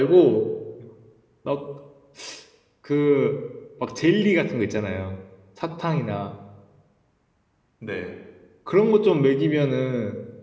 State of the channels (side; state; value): both; identical; correlation 1.00